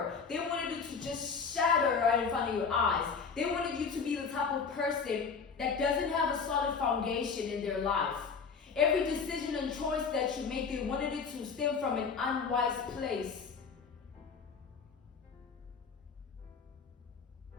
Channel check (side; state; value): right; quieter; 5.6 dB